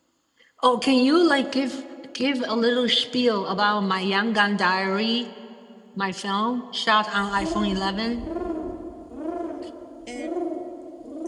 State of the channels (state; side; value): identical; both; correlation 1.00